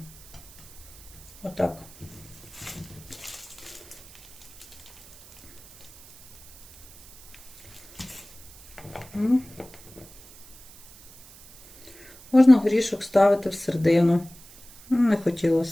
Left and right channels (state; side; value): noise; right; hiss, 21 dB below the sound